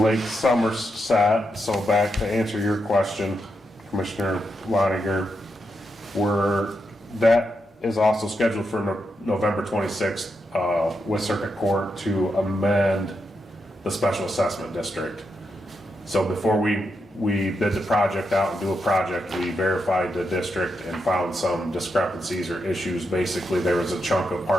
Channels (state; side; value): normal; both; correlation 0.84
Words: Somerset, so back to answer your question, Commissioner Loniger, that is also scheduled for November 26th with Circuit Court to amend the special assessment district. So before we bid the project out and do a project, we verified the district and found some discrepancies or issues. Basically, there was a chunk of